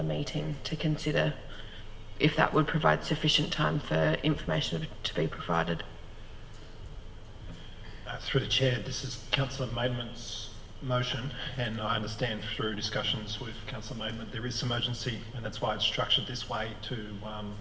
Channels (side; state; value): both; identical; correlation 1.00